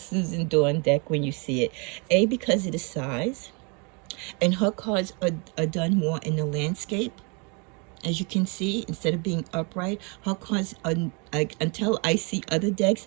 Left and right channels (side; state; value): left; quieter; 32.8 dB